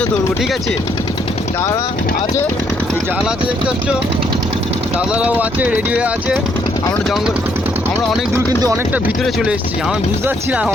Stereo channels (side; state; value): both; normal; correlation 0.71